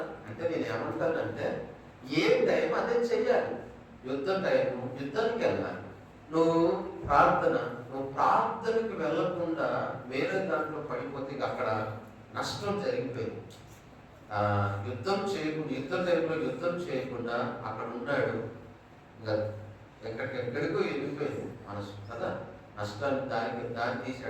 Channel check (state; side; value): identical; both; correlation 1.00